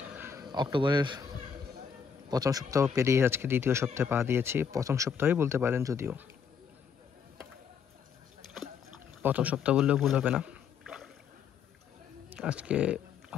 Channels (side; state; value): right; quieter; 6.7 dB